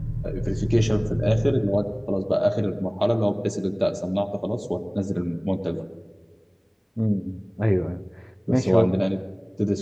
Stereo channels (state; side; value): identical; both; correlation 1.00